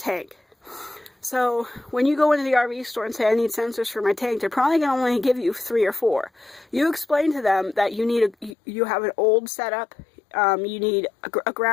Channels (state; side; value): drops out; right; at 8.6 s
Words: So when you go into the RV store and say, I need sensors for my tank, they're probably going to only give you 3 or 4. You explain to them that you have an old setup, you need a